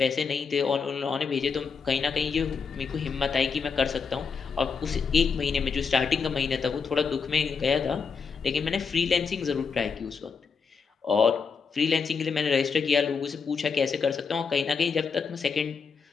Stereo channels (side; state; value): right; quieter; 5.6 dB